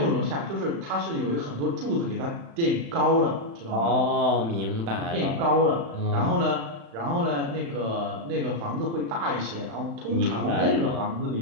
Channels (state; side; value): late; left; 35 ms